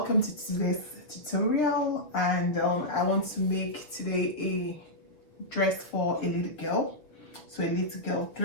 to today's tutorial, and I want to make today a dress for a little girl, so a little girl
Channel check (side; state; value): right; late; 6.2 ms